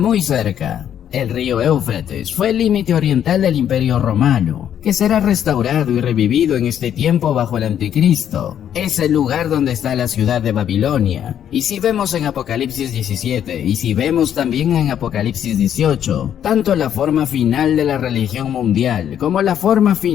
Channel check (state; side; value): quieter; right; 9.8 dB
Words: cerca. El río Éufrates fue el límite oriental del Imperio Romano, que será restaurado y revivido en este tiempo bajo el Anticristo. Es el lugar donde está la ciudad de Babilonia. Y si vemos en Apocalipsis 17, y si vemos también en Apocalipsis 18, tanto la forma final de la religión mundial como la forma